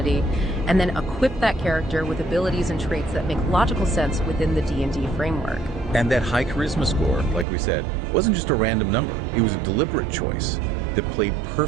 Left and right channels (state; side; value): drops out; left; at 7.5 s